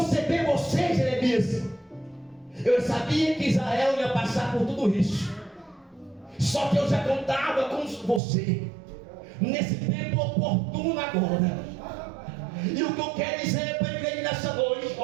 você, Jeremias, eu sabia que Israel ia passar por tudo isso. Só que eu já contava com você. nesse tempo oportuno agora. E o que eu quero dizer para a igreja nessa noite,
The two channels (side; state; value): left; drops out; at 8.2 s